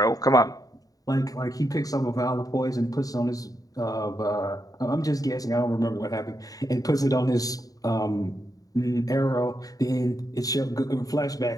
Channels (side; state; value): right; late; 0.18 ms